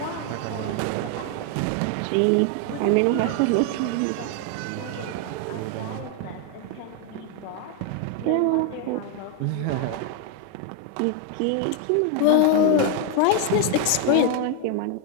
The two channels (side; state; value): both; different; correlation 0.01